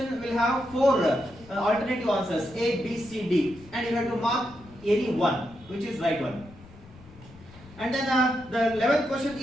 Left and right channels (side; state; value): left; noise; rumble, 22 dB below the sound